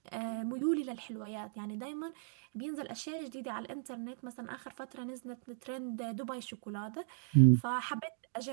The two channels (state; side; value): silent; left; digital silence